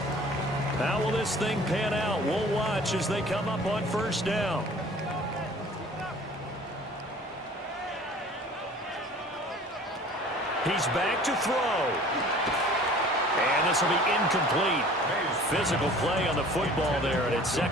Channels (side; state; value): both; normal; correlation 0.48